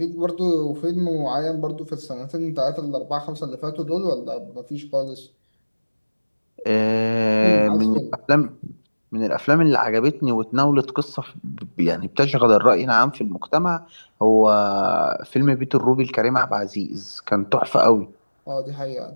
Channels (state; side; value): inverted; both; correlation -1.00